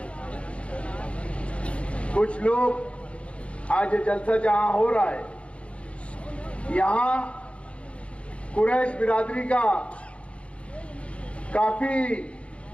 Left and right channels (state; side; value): late; right; 0.061 ms